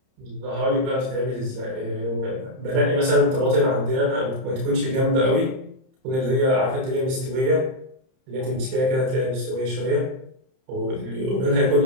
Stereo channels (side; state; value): left; late; 30 ms